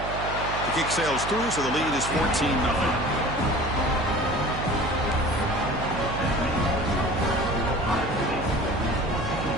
The kick sails through, so the lead is 14-0.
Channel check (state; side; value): noise; right; hum, 8 dB below the sound